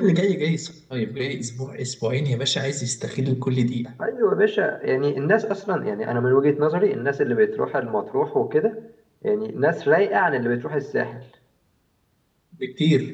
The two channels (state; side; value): identical; both; correlation 1.00